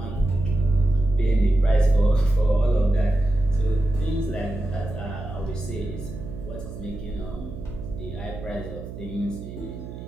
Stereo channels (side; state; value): right; noise; hum, 11 dB below the sound